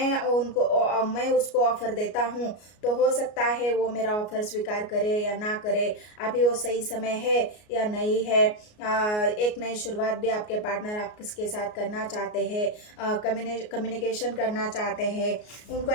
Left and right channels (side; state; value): right; late; 33 ms